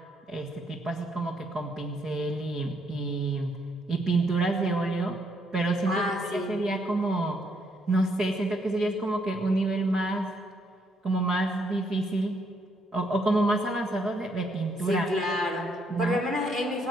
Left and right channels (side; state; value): both; normal; correlation 0.73